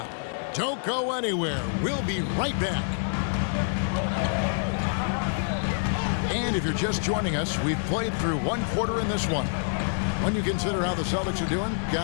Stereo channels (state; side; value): silent; right; digital silence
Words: Don't go anywhere. We'll be right back. And if you're just joining us, we've played through one quarter in this one. When you consider how the Celtics are doing,